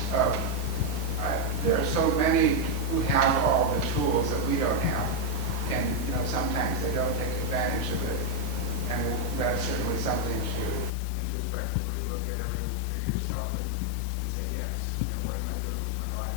there are so many who have all the tools that we don't have, and sometimes they don't take advantage of it, and that's certainly something to introspectively look at yourself and say, yes, what am I doing with my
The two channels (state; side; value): drops out; right; at 10.9 s